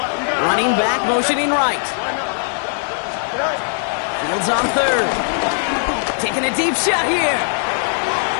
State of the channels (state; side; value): silent; right; digital silence